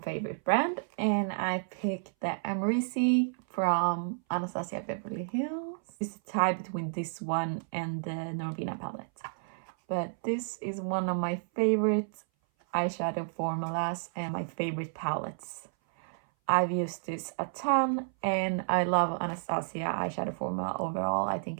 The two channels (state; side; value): silent; left; 57 dB below the other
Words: favorite brand, and I picked the Americi from Anastasia Beverly Hills. It's a tie between this one and the Norvina palette. But this is one of my favorite eyeshadow formulas and my favorite palettes. I've used this a ton and I love Anastasia eyeshadow formula overall. I think